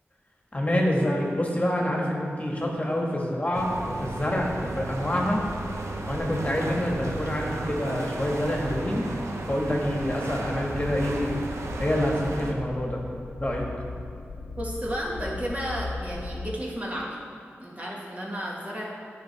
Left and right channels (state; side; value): normal; both; correlation 0.90